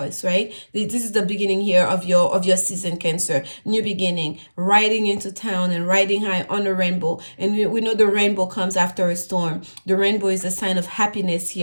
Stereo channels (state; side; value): inverted; both; correlation -1.00